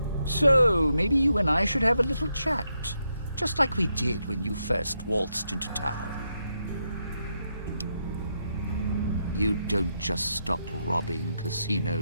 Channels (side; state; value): both; inverted; correlation -0.82